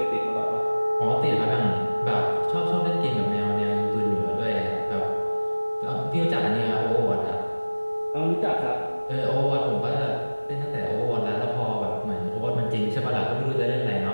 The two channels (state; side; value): inverted; both; correlation -1.00